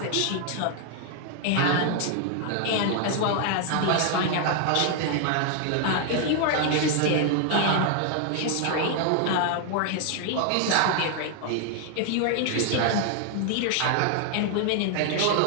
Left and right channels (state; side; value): different; both; correlation 0.00